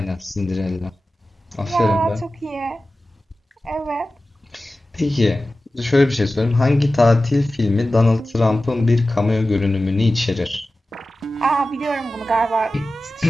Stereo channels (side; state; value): both; normal; correlation 0.95